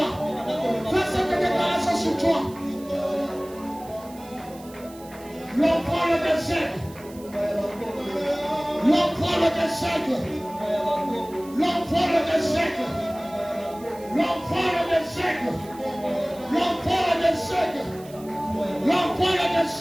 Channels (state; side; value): noise; right; hiss, 22 dB below the sound